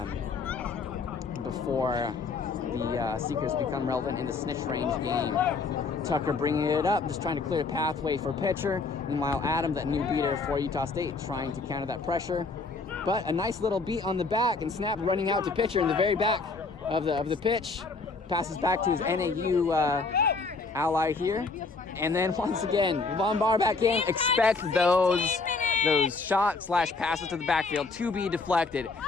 before the Seekers become relevant in the snitch range game. Tucker bringing it up, just trying to clear a pathway for Pitcher. Meanwhile, Adam, that new beater for Utah State, trying to counter that pressure. But a nice little beat on the back, and Snapp running out to Pitcher in the very back of the pitch. Passes back to his NAU ally here. And then once again, Von Bar back in. Expect those shots / passes to the backfield to be deflected.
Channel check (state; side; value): quieter; right; 4.2 dB